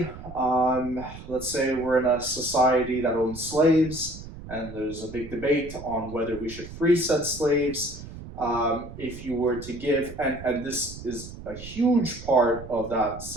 let's say we're in a society that owns slaves, and there's a big debate on whether we should free said slaves. If you were to give, and this is a huge part of that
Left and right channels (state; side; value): noise; right; rumble, 13 dB below the sound